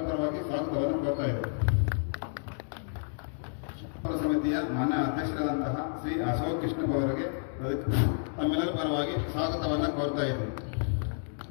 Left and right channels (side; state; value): right; silent; digital silence